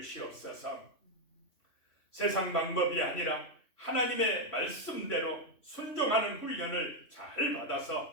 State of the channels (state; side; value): late; right; 3.0 ms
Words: 세상 방법이 아니라 하나님의 말씀대로 순종하는 훈련을 잘